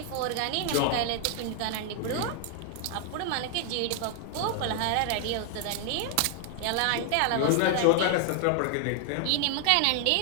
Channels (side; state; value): both; different; correlation 0.00